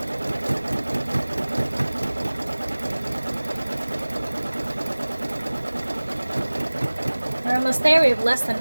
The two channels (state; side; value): inverted; both; correlation -1.00